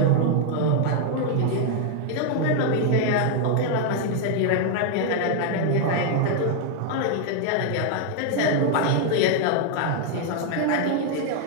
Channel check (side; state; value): both; different; correlation 0.00